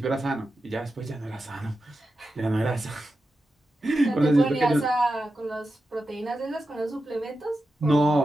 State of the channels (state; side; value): normal; both; correlation 0.91